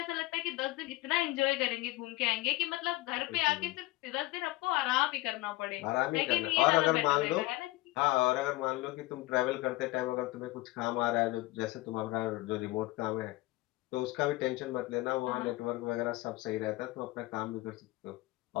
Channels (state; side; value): quieter; right; 20.1 dB